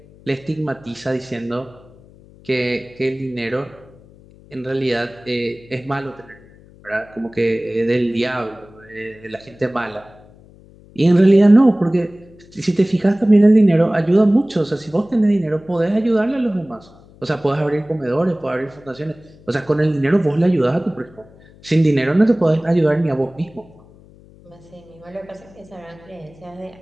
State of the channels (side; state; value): left; noise; hum, 25 dB below the sound